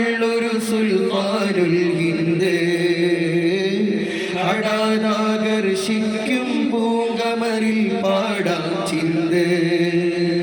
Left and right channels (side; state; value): both; identical; correlation 1.00